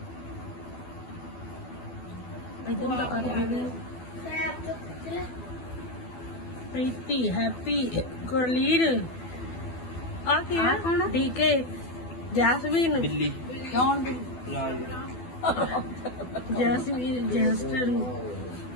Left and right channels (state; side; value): late; right; 12 ms